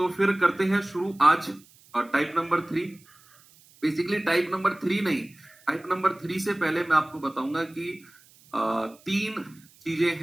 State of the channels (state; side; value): noise; right; hiss, 27 dB below the sound